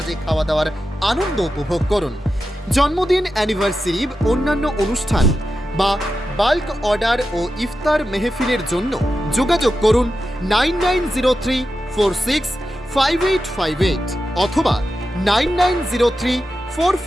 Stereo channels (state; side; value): normal; both; correlation 0.91